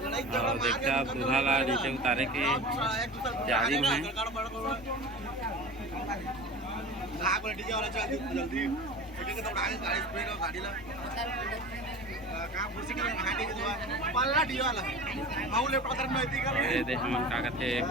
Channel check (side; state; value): both; normal; correlation 0.34